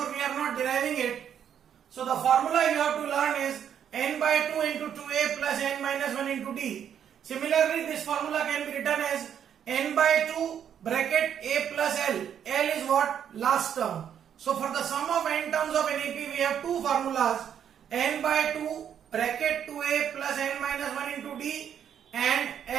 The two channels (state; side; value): quieter; left; 8.9 dB